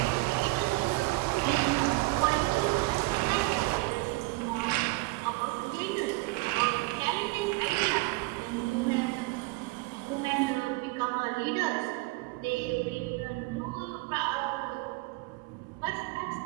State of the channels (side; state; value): left; quieter; 22.9 dB